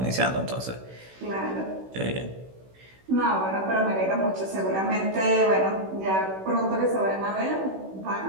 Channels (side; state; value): left; late; 16 ms